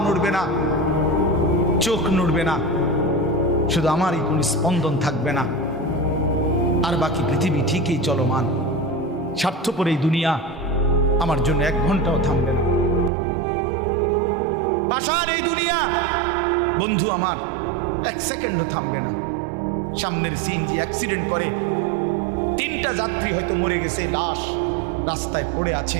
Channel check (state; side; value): drops out; left; at 13.1 s